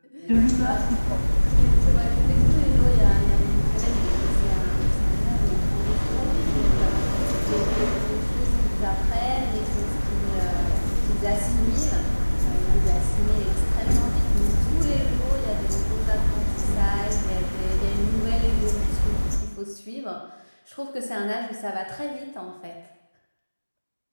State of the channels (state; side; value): inverted; both; correlation -1.00